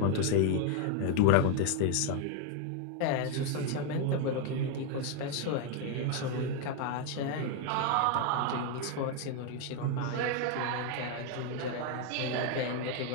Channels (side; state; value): both; different; correlation 0.01